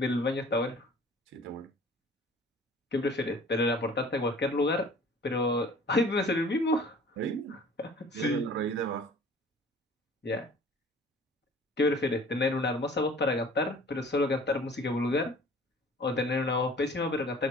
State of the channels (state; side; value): normal; both; correlation 0.48